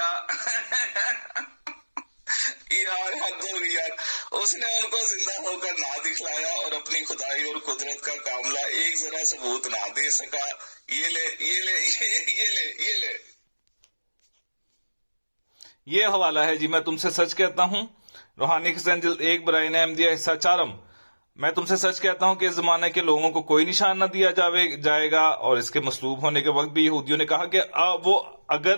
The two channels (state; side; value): inverted; both; correlation -1.00